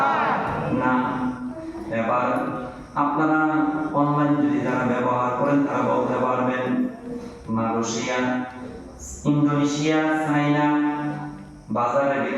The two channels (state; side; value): identical; both; correlation 1.00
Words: না। এবার আপনারা অনলাইন যদি যারা ব্যবহার করেন তারা বলতে পারবেন মালয়েশিয়া, ইন্দোনেশিয়া, চায়না বাজারের